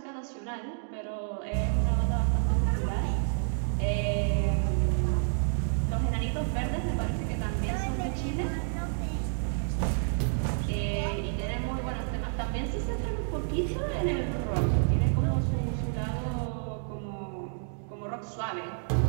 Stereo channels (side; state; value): left; silent; digital silence